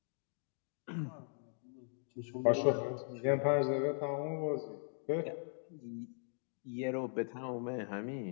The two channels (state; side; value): silent; right; digital silence